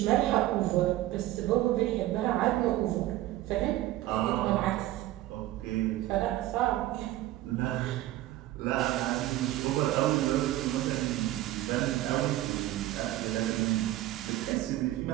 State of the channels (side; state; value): left; quieter; 15.3 dB